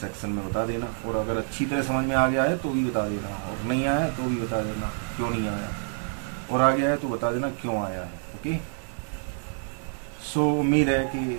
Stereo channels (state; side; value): silent; left; 56 dB below the other